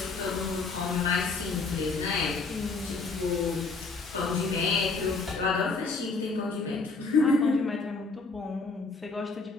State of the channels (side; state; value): right; quieter; 4.0 dB